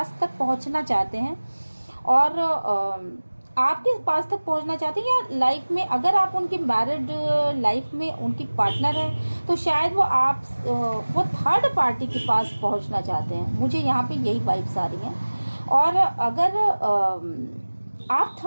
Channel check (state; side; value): inverted; both; correlation -1.00